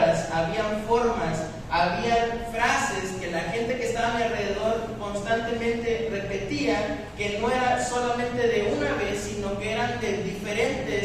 habían formas, habían frases que la gente que estaba a mi alrededor constantemente repetía, que no era solamente de una vez, sino que eran de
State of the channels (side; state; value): both; identical; correlation 1.00